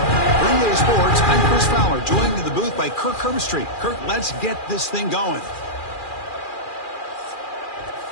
Green Day Sports, I'm Chris Fowler, joined in the booth by Kirk Herbstreit. Kirk, let's get this thing going.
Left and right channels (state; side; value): late; right; 2.4 ms